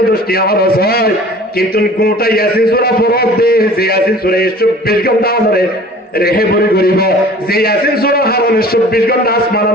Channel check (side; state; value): both; normal; correlation 0.46